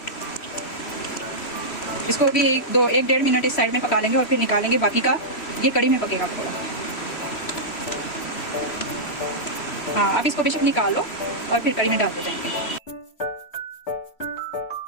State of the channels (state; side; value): late; right; 3.1 ms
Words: इसको भी 1-1.5 मिनट इस साइड में पका लेंगे और फिर निकालेंगे, बाकी का ये कड़ी में पकेगा पकौड़ा। हाँ, अब इसको बेशक निकालो और फिर कड़ी में डालते जाएंगे।